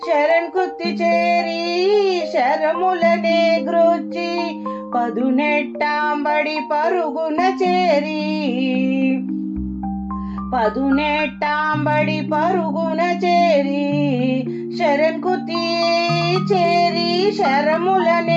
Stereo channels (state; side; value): identical; both; correlation 1.00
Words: శరణ్కుత్తి చేరి శరములనే గ్రోచి, పదునెట్టాంబడి పరుగున చేరి, పదునెట్టాంబడి పరుగున చేరి, శరణ్కుత్తి చేరి